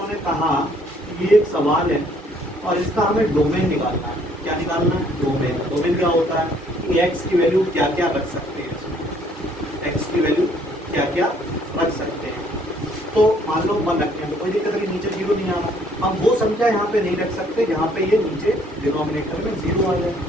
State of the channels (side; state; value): both; normal; correlation 0.63